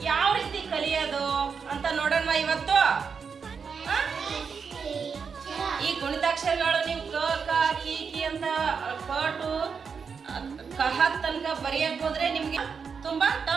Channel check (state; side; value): quieter; left; 5.9 dB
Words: ಯಾವ ರೀತಿ ಕಲಿಯೋದು ಅಂತ ನೋಡೋಣ ಇವತ್ತು. ಈ ಗುಣಿತಾಕ್ಷರಗಳು ನೀವು ಕ ಕ ಕಿ ಕಿ ಅಂತ ಕ ಟು ಕಹ ತನಕ ಬರೆಯಕ್ ಹೋದ್ರೆ ನಿಮ್ಗೆ ತುಂಬಾ